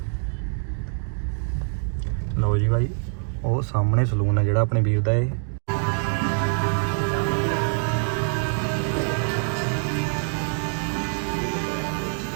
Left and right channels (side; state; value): left; silent; 61 dB below the other